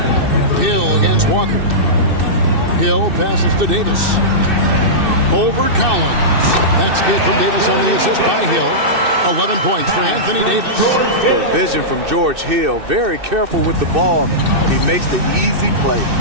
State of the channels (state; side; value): late; left; 2.6 ms